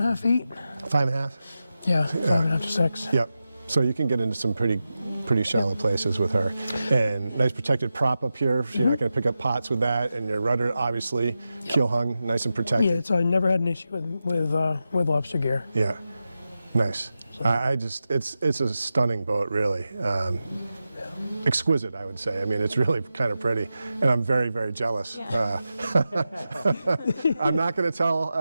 feet. 5.5? Yeah, 5.5 to 6. Yep. So you can get into some pretty shallow places with her. And nice protected prop up here. You're not going to pick up pots with that. And your rudder, obviously, keel hung, nice and protected. Yeah, I never had an issue with lobster gear. Yeah. Nice. It's a stunning boat, really. Exquisite, I would say. I mean, it's really kind of pretty, and I'm very, very jealous. I'm not going to tell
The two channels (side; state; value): both; inverted; correlation -0.91